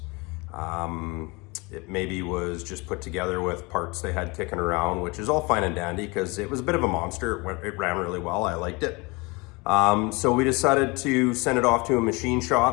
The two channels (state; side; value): quieter; right; 26.6 dB